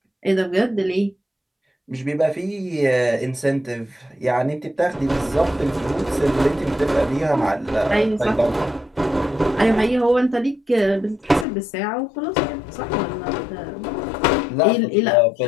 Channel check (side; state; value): right; drops out; at 11.5 s